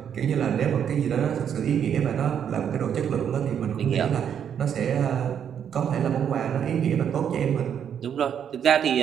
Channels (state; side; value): quieter; left; 8.5 dB